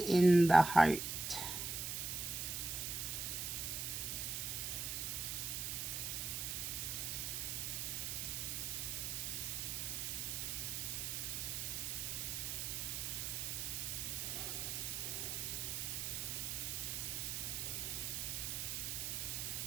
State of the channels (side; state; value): right; noise; hiss, 2 dB below the sound